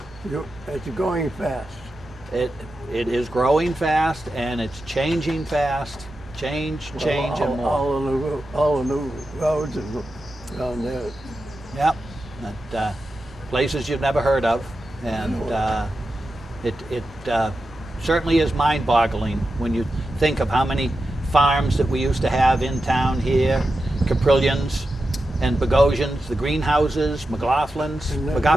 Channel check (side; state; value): both; normal; correlation 0.90